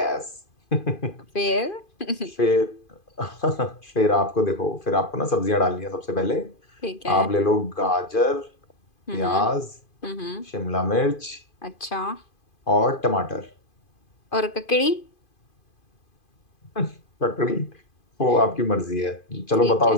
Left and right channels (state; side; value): late; right; 2.5 ms